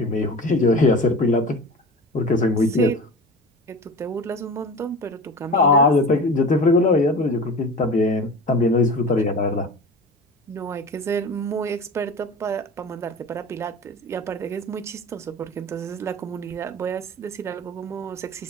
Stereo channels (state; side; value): normal; both; correlation 0.34